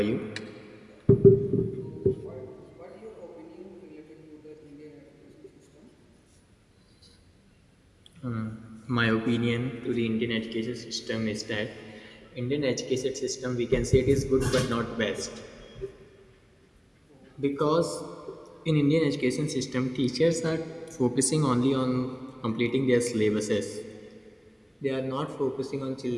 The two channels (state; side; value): identical; both; correlation 1.00